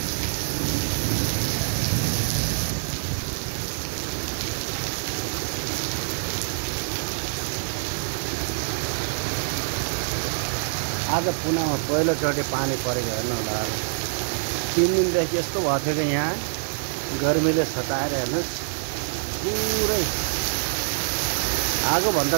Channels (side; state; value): left; silent; digital silence